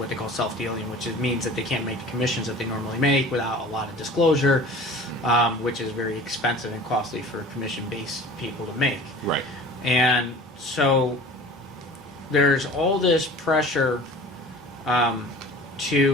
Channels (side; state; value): both; normal; correlation 0.42